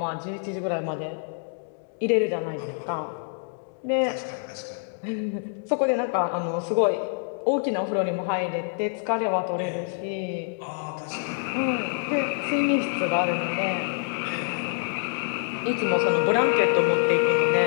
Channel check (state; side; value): silent; right; 61 dB below the other